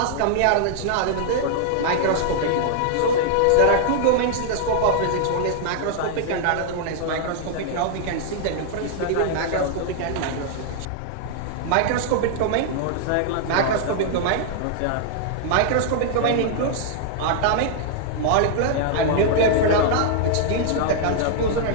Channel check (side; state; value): both; different; correlation -0.01